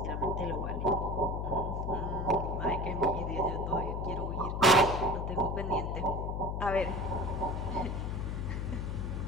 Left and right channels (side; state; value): left; noise; hum, 2 dB below the sound